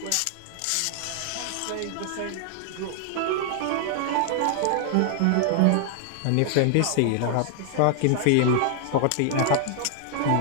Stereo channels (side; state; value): both; different; correlation 0.00